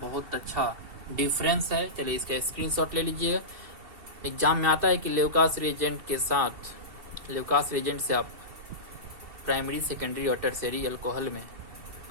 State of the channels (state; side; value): late; left; 2.7 ms